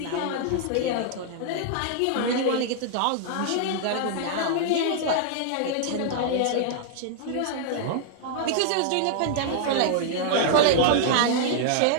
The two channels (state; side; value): different; both; correlation -0.01